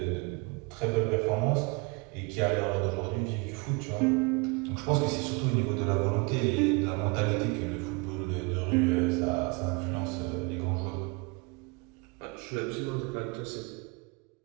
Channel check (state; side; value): quieter; left; 29.1 dB